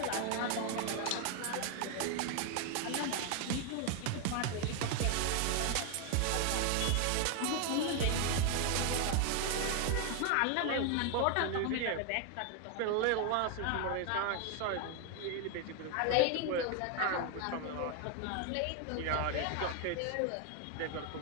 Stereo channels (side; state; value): both; different; correlation 0.01